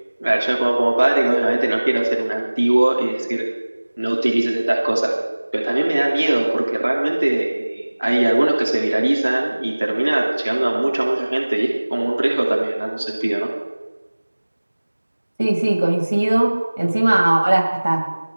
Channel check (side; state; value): both; inverted; correlation -1.00